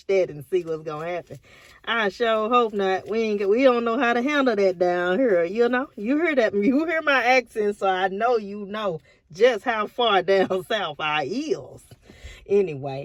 that and see what's gonna happen. I sure hope not. We don't know how to handle that down here. You know, you hear that? You hear my accent, so I know you know just how far down south I is.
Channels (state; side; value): identical; both; correlation 1.00